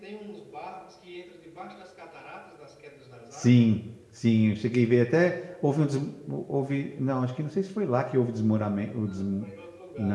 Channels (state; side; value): identical; both; correlation 1.00